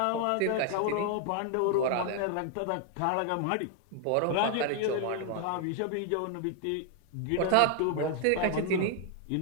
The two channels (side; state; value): both; different; correlation 0.00